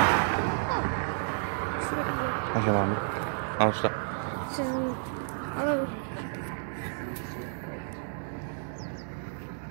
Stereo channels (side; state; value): left; silent; digital silence